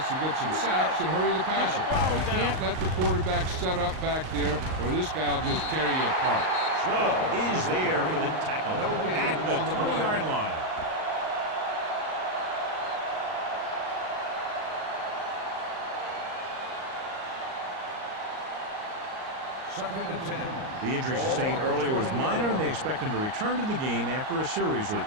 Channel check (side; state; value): left; late; 38 ms